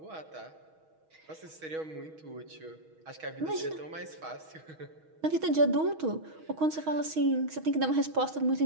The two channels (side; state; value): left; late; 6.3 ms